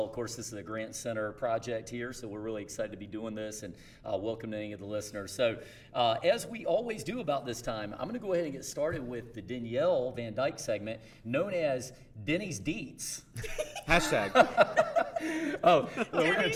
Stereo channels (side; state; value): both; identical; correlation 1.00